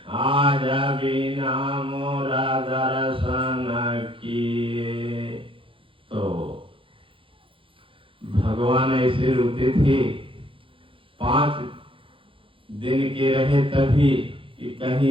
आज बिना मोरा दर्शन किए। तो भगवान ऐसे रोते थे 5 दिन के रहे तभी कि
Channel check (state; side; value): late; left; 0.25 ms